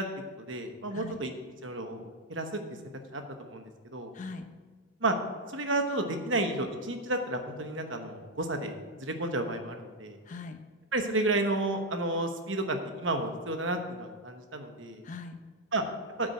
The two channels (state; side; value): normal; both; correlation 0.03